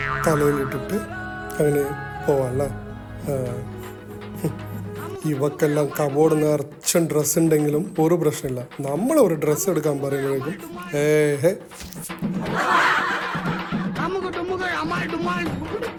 തലയിലിട്ടിട്ട് അങ്ങനെ പോവാല്ലേ? ഇവക്കെല്ലാം കബോർഡ് നിറച്ചും ഡ്രസ്സ് ഉണ്ടെങ്കിലും ഒരു പ്രശ്നമില്ല. നമ്മളൊരു ഡ്രസ്സ് എടുക്കാൻ പറയുമ്പോഴേക്കും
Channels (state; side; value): identical; both; correlation 1.00